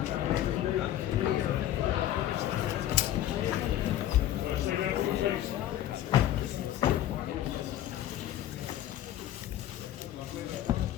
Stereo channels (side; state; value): right; quieter; 12.5 dB